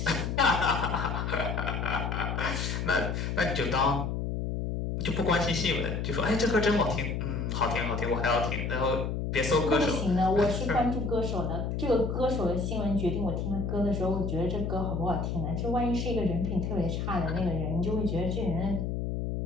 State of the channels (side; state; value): left; noise; hum, 2 dB below the sound